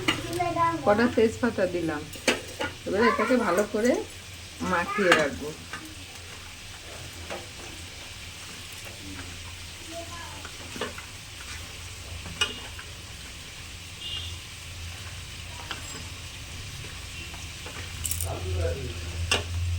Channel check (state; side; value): identical; both; correlation 1.00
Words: কটা তেজপাতা দিলাম। এবারে এটাকে ভালো করে মাখিয়ে রাখবো।